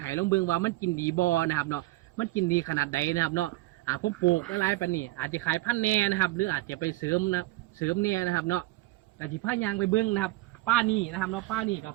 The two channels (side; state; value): left; quieter; 19.3 dB